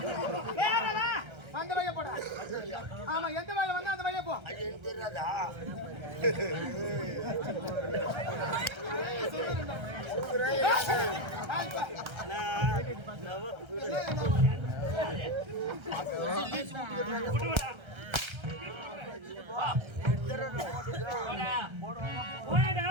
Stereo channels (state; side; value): late; left; 1.3 ms